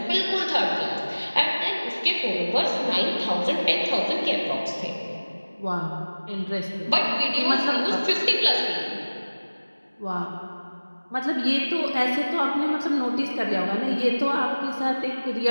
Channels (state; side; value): inverted; both; correlation -1.00